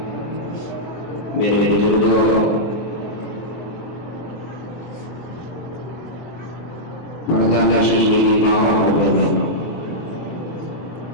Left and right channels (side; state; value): right; late; 24 ms